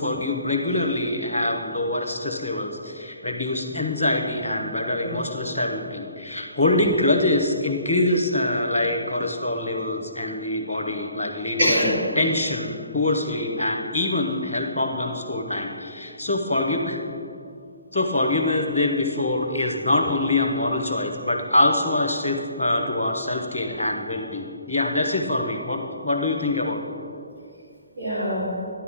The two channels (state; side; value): inverted; both; correlation -0.61